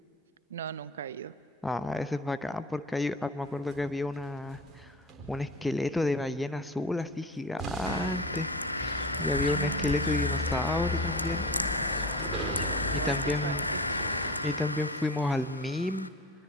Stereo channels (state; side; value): normal; both; correlation 0.32